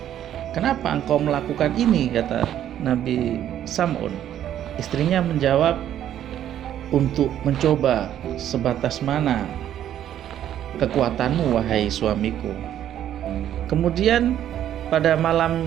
"Kenapa engkau melakukan ini?" kata Nabi Sam'un. Istrinya menjawab, "Untuk mencoba sebatas mana kekuatanmu, wahai suamiku." Kemudian pada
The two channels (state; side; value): quieter; left; 11.0 dB